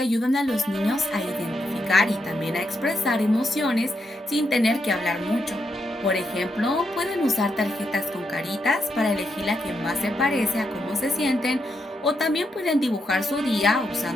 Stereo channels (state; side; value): normal; both; correlation 0.81